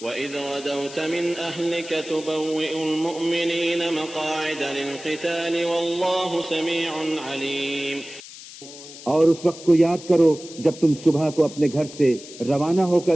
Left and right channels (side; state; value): left; noise; hiss, 16 dB below the sound